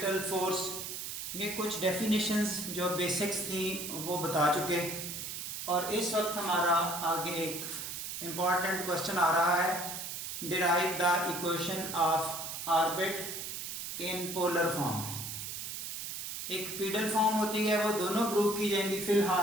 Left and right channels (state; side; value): noise; right; hiss, 6 dB below the sound